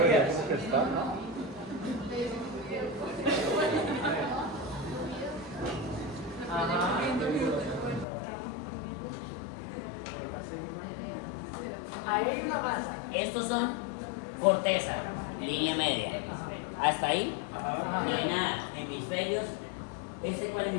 ¿cómo que está? Ajá. Ahí hay una masa. Estos son corteza, línea media. Hasta ahí, no hay nada. Hemisferios. ¿Este cuál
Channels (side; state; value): right; drops out; at 8.1 s